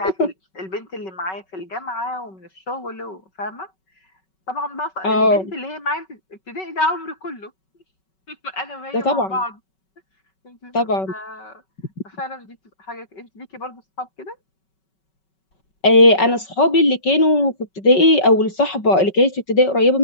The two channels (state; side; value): late; right; 5.3 ms